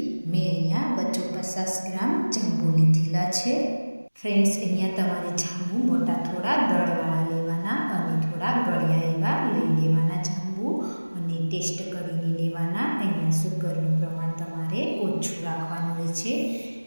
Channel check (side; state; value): both; inverted; correlation -1.00